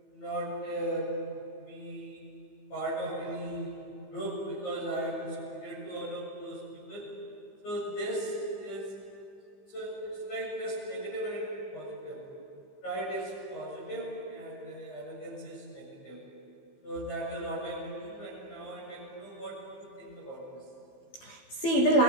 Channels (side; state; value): right; late; 15 ms